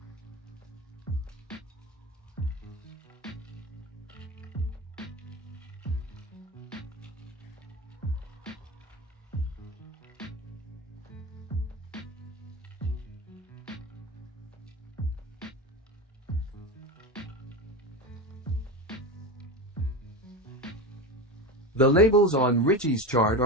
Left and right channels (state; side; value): normal; both; correlation 0.23